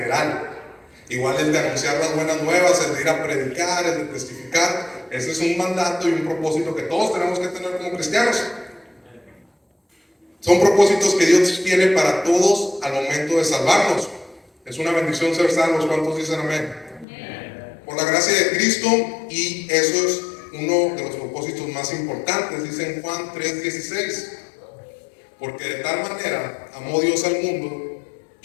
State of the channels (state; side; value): drops out; right; at 17.1 s